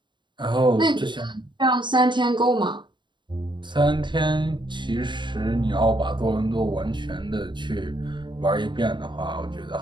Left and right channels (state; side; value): late; left; 0.22 ms